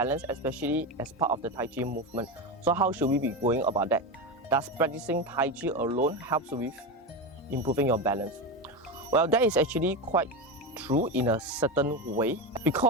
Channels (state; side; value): normal; both; correlation 0.18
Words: especially as part of the Tai Chi movement. So how should we be going about that? Does practicing Tai Chi alone helps with improving your balance? Well, that is actually quite true in a certain way,